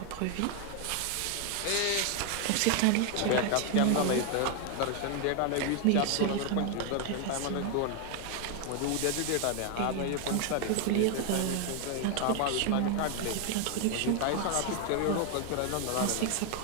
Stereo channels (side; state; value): both; different; correlation 0.01